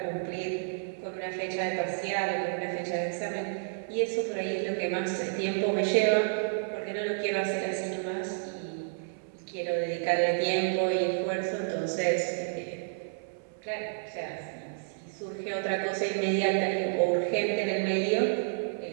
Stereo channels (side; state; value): left; silent; 58 dB below the other